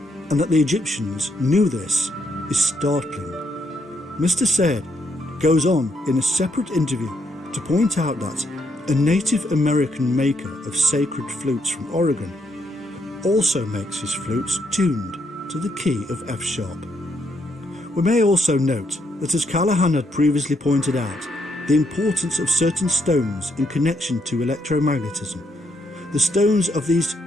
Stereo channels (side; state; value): both; normal; correlation 0.76